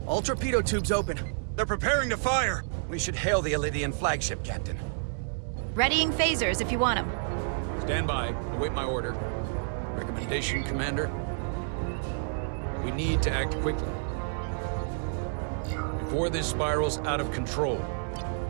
All torpedo tubes open. They're preparing to fire! We should hail the Alydian flagship, Captain. Readying phasers if you want them. Stand by, await my order. Recommendation, Commander? We need to act quickly. Before this spirals out of control.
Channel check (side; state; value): left; silent; digital silence